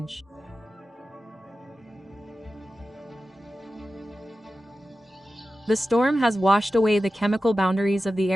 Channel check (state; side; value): normal; both; correlation 0.94